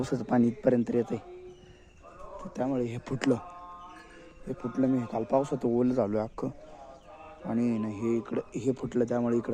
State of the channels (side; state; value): both; identical; correlation 1.00